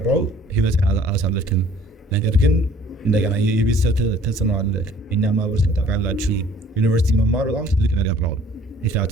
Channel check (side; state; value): both; normal; correlation 0.55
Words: ህይወት አላሳለፍክም። ነገር ግን እንደገና የቤተሰብ ተጽዕኖ አለ። እኛ ማህበረሰብ ታውቃላችሁ፣ ዩኒቨርሲቲ መማር በጣም ትልቅ ነገር ነው።